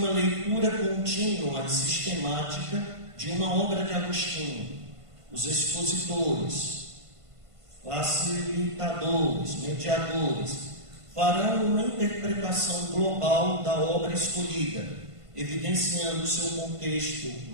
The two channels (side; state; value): left; late; 1.5 ms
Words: leitura contínua e sistemática de uma obra de Agostinho. Os expositores, facilitadores, mediadores, farão uma interpretação global da obra escolhida, evidenciando seu contexto